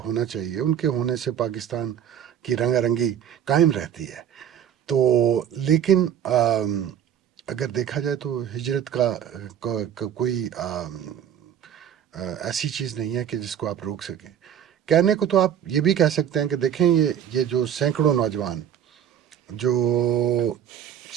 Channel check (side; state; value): left; quieter; 9.5 dB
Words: ہونا چاہیے. ان کے ہونے سے پاکستان کی رنگا رنگی قائم رہتی ہے. تو لیکن اگر دیکھا جائے تو ہجرت کا کوئی ایسی چیز نہیں ہے کہ جس کو آپ روک سکیں. کہنے کو تو آپ یہ بھی کہہ سکتے ہیں کہ دیکھیں یہ جو سینکڑوں نوجوان جو